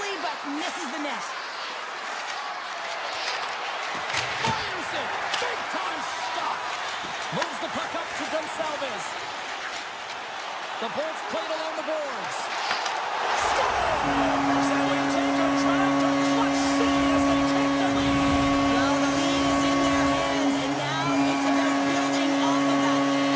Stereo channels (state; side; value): identical; both; correlation 1.00